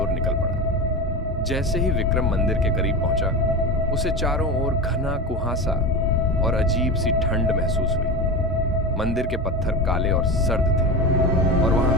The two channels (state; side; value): normal; both; correlation 0.24